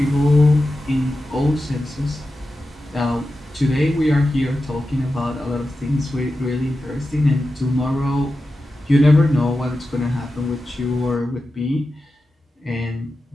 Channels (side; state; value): both; normal; correlation 0.92